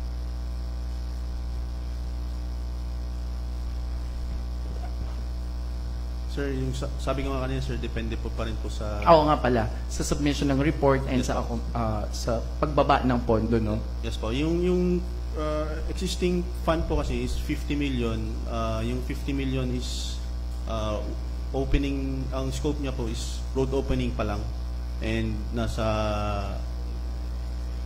Sir, yung sabi ko nga kanina, sir, depende po pa rin po sa... Oo nga pala, sa submission ng report and sa pagbaba ng pondo, no? Yes po. Yung existing fund po kasi is 50 million. Yung 50 million is opening, ang scope niya po is road opening pa lang. And nasa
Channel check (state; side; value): identical; both; correlation 1.00